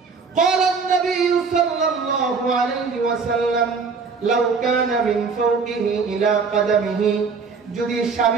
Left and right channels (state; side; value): quieter; left; 5.1 dB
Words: قال النبي صلى الله عليه وسلم لو كان من فوقه إلى قدمه, যদি